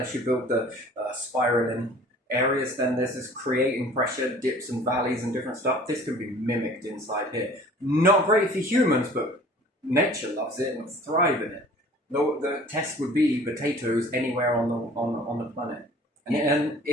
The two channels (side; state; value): both; normal; correlation 0.48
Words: you build the spiraling areas. Then there's this creating pressure, dips and valleys and different stuff. This can be mimicked inside here. Not great for humans, but nature loves it and thrive in it. The test would be potatoes anywhere on the planet. And